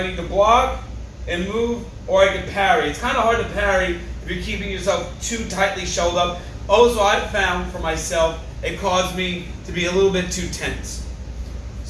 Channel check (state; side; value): identical; both; correlation 1.00